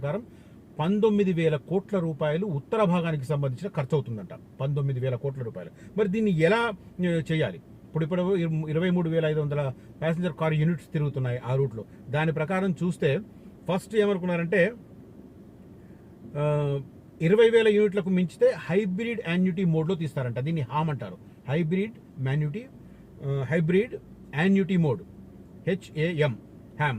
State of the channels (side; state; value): both; identical; correlation 1.00